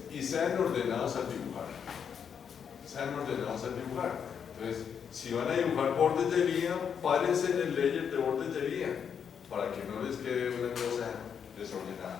y sean ordenados al dibujar. Sean ordenados al dibujar. Entonces, si van a dibujar bordes de vía, párense en el layer de bordes de vía, para que no les quede una cosa desordenada.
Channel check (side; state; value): right; quieter; 7.4 dB